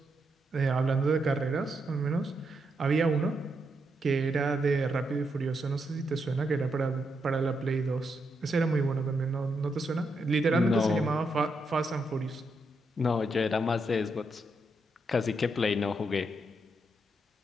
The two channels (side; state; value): both; normal; correlation 0.81